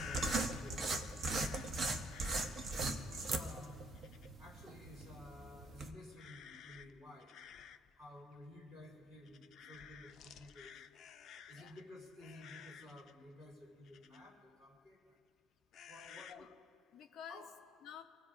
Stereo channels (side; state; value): both; normal; correlation 0.68